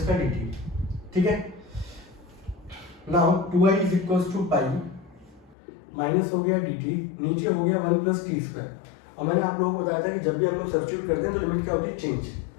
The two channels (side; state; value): right; drops out; at 5.6 s